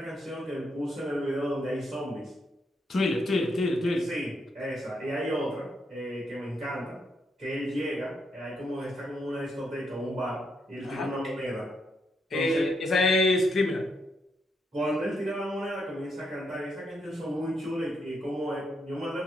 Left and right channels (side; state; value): both; normal; correlation 0.78